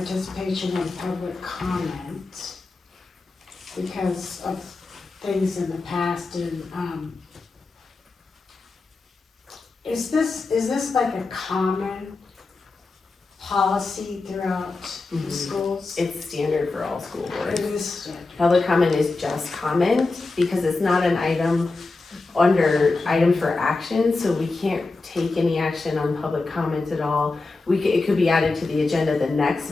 and public comment because of things in the past and is this like a common policy throughout the schools? It's standard for all school boards. It is standard. Public comment is just comment because it's not an item under item for action, so we can't take any action on public comment at all. It could be added to the agenda the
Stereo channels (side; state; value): right; quieter; 3.6 dB